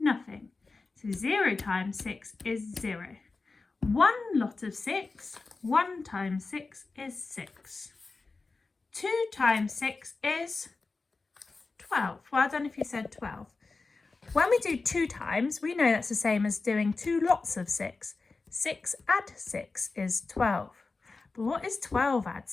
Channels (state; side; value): quieter; right; 3.9 dB